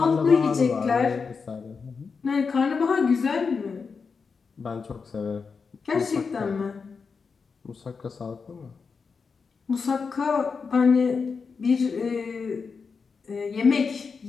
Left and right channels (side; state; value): right; quieter; 5.2 dB